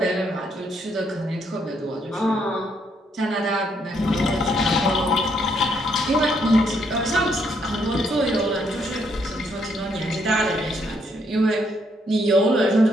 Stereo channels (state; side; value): normal; both; correlation 0.73